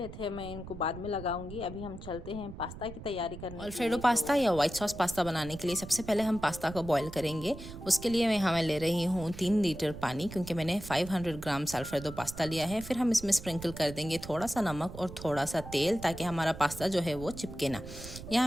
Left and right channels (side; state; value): right; noise; rumble, 12 dB below the sound